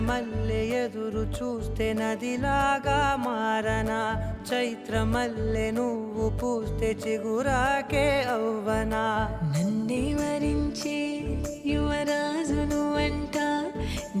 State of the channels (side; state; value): both; identical; correlation 1.00